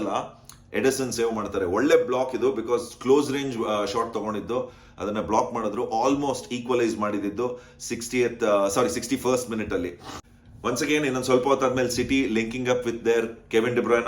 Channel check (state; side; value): identical; both; correlation 1.00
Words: ಎಡಿಸನ್ ಸೇವ್ ಮಾಡ್ತಾರೆ. ಒಳ್ಳೆ ಬ್ಲಾಕ್ ಇದು, ಬಿಕಾಸ್ ಕ್ಲೋಸ್ ರೇಂಜ್ ಶಾಟ್ ತಗೊಂಡಿದ್ದು, ಅದನ್ನ ಬ್ಲಾಕ್ ಮಾಡಿದ್ರು. ಆಲ್ಮೋಸ್ಟ್ ಈಕ್ವಲೈಸ್ ಮಾಡಿದ್ದು 61st ಮಿನಿಟ್ ಅಲ್ಲಿ. ಒನ್ಸ್ ಅಗೇನ್ ಇನ್ನೊಂದು ಸ್ವಲ್ಪ ಹೊತ್ತಾದ್ಮೇಲೆ City linking up with their Kevin De